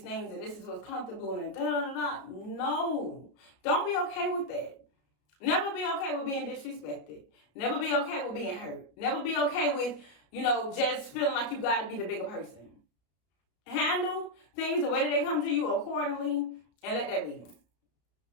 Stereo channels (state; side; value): late; right; 33 ms